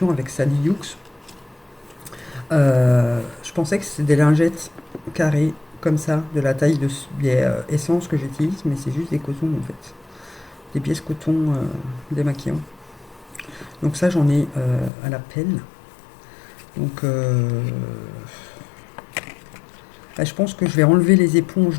avec Sally Hughes. Je pensais que c'était des lingettes carrées comme ça, de la taille de essence que j'utilise, mais c'est juste des cotons en fait, des pièces coton démaquillants. Donc ça j'en ai à la pelle. Donc je pense que je vais enlever les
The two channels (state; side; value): drops out; right; at 14.9 s